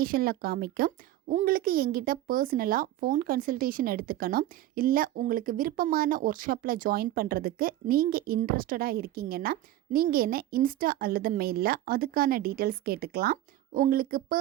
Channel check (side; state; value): left; quieter; 14.3 dB